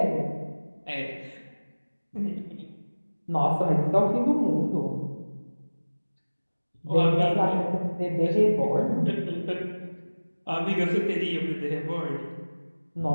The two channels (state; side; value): inverted; both; correlation -1.00